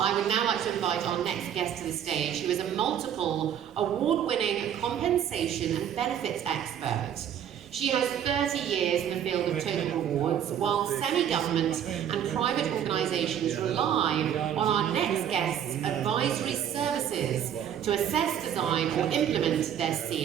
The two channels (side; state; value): left; quieter; 9.5 dB